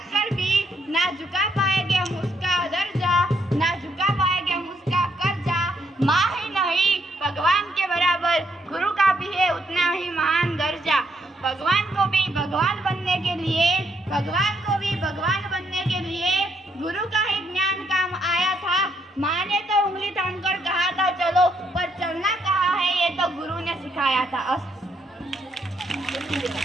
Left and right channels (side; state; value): both; normal; correlation 0.74